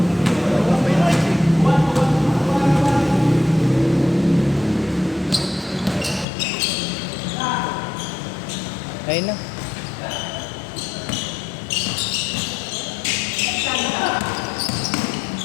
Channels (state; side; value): drops out; right; at 6.2 s